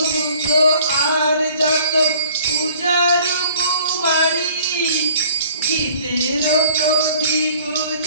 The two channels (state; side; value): inverted; both; correlation -0.52